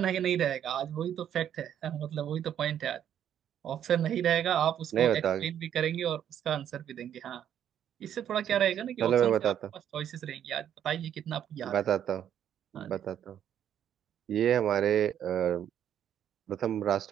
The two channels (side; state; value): left; quieter; 9.9 dB